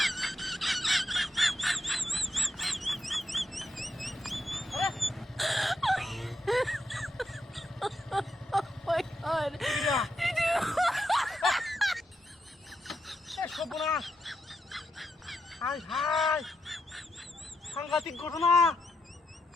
হাই সাংঘাতিক ঘটনা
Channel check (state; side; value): normal; both; correlation 0.83